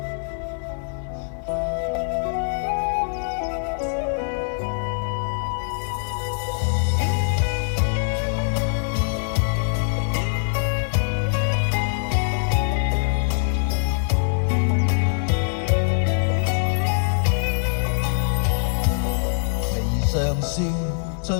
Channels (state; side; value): silent; right; digital silence